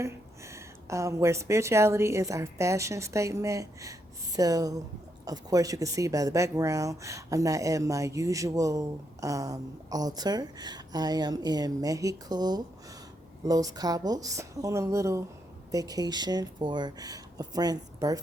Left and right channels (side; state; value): both; normal; correlation 0.79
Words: where spirituality is our fashion statement. So of course you can see by the background, I'm not at my usual altar. I am in Mexico, Los Cabos, on a little vacation for a friend's